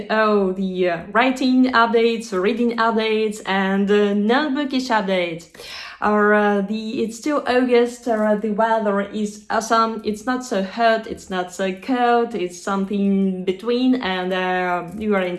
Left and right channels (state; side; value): identical; both; correlation 1.00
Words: all the writing updates, reading updates, and non-bookish updates. It's still August. The weather is awesome. It's not so hot. It's not so cold. It's something between, and you are